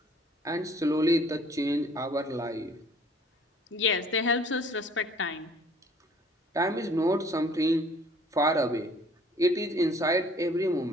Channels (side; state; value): both; normal; correlation 0.55